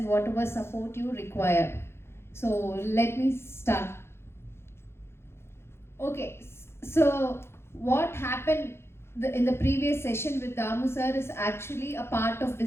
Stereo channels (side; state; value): right; late; 0.12 ms